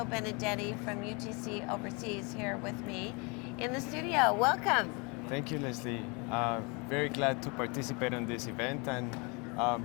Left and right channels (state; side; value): quieter; right; 30.4 dB